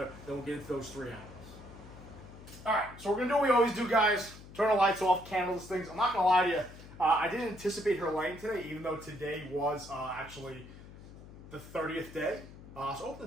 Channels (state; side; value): noise; left; hum, 17 dB below the sound